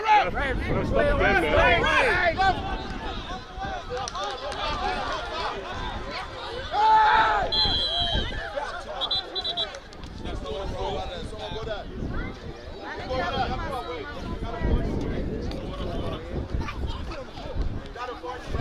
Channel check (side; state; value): both; identical; correlation 1.00